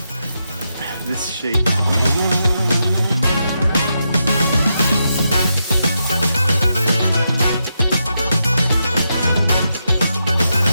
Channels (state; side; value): inverted; both; correlation -0.84